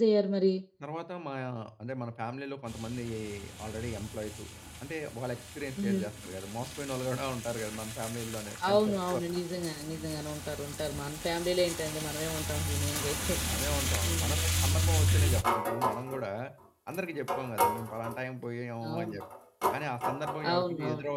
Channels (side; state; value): both; identical; correlation 1.00